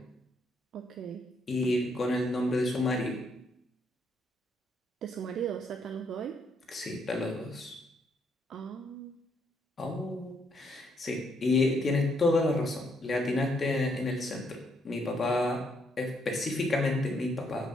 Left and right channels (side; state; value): both; normal; correlation 0.73